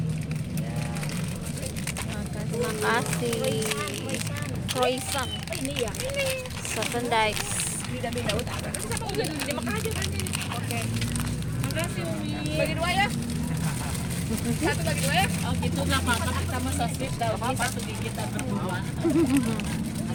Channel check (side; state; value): both; identical; correlation 1.00